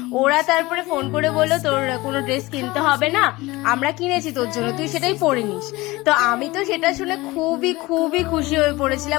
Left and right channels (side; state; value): right; quieter; 20.8 dB